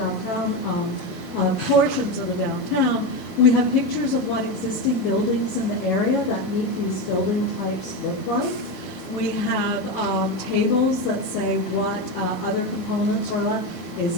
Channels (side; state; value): both; normal; correlation 0.15